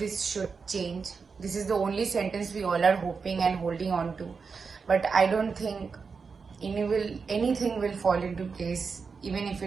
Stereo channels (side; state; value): left; quieter; 5.2 dB